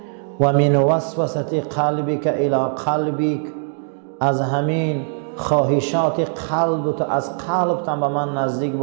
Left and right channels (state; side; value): silent; left; digital silence